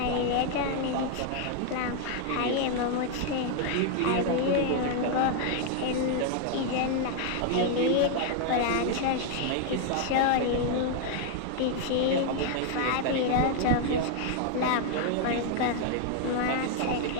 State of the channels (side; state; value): both; different; correlation 0.00